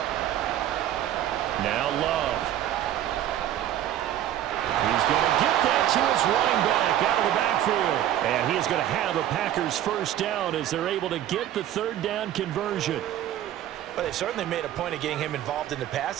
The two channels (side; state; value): left; quieter; 11.9 dB